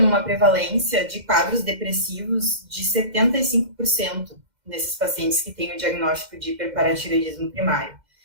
uma prevalência de quadros depressivos de 75% nesses pacientes que têm o diagnóstico de hiperparatireoidismo primário,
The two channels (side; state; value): left; late; 2.1 ms